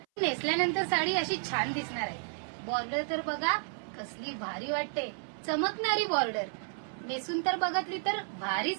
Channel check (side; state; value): left; silent; 56 dB below the other